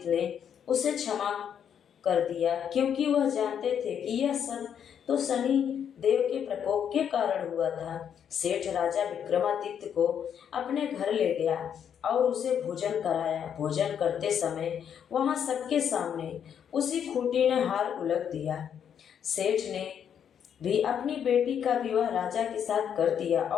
ने उसे क्षमा कर दिया, क्योंकि वह जानते थे कि यह सब तो शनि देव के प्रकोप के कारण हुआ था। सेठ राजा विक्रमादित्य को अपने घर ले गया और उसे भोजन कराया। भोजन करते समय वहां सबके सामने उसी खूंटी ने हार उलट दिया। सेठ ने भी अपनी बेटी का विवाह राजा के साथ कर दिया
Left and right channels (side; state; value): right; quieter; 8.4 dB